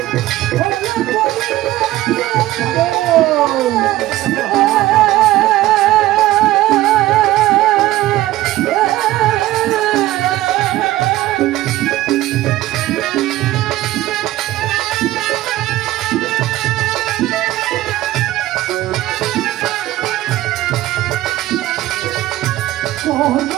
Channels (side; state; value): left; quieter; 15.9 dB